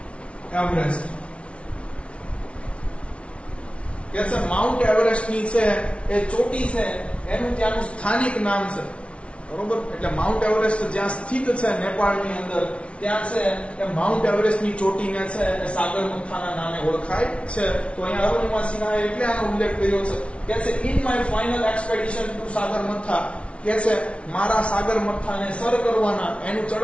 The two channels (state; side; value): late; right; 0.061 ms